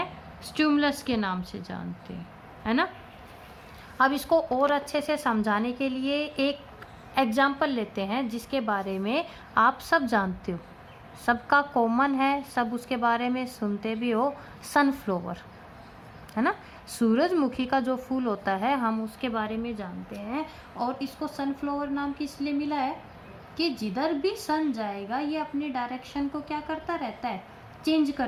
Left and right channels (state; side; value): identical; both; correlation 1.00